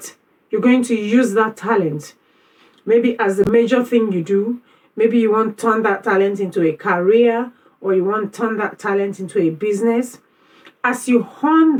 you're going to use that talent, maybe as the major thing you do. Maybe you want to turn that talent into a career, or you want to turn that talent into a business. As you hone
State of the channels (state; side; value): identical; both; correlation 1.00